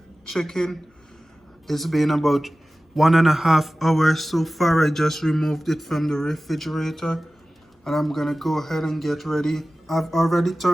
chicken. It's been about 1.5 hours so far. I just removed it from the refrigerator and I'm gonna go ahead and get ready. I've already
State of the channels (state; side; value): normal; both; correlation 0.96